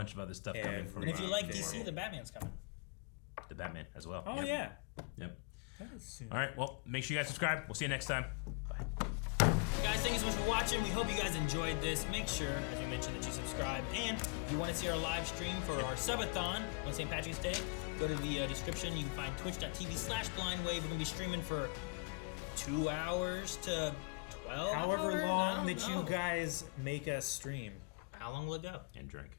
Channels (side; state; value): right; quieter; 30.8 dB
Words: of other stuff coming. And if you like DC, the Batman's coming. The Batman as well. Oh, yeah. Yep. All right, well, make sure you guys subscribe. We'll see you next time. Bye. Guys, thank you so much for watching. We hope you guys enjoyed this. Make sure, as we mentioned, that you subscribe. And if you want to see our live stream for our subathon on St. Patrick's Day, go to the description. You can find twitch.tv/blindwave. We're going to be streaming for 2 hours to 12 However hours? long that you guys make us stream. How long will it go? And drink.